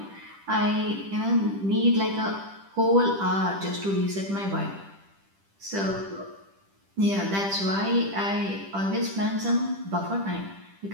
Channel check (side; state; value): left; late; 10 ms